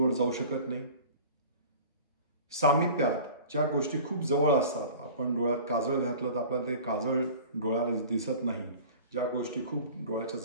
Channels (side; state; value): both; inverted; correlation -0.41